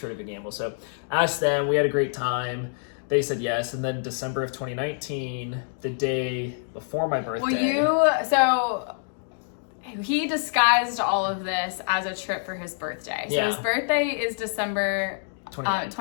of a gamble. So asked them, we had a great time. They said yes, and then December of 2019, the day before my birthday. He disguised all of this as a trip for his birthday. So his birthday is December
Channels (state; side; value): silent; right; digital silence